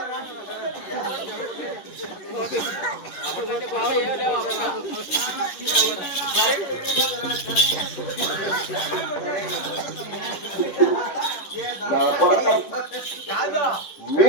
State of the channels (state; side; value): late; right; 10 ms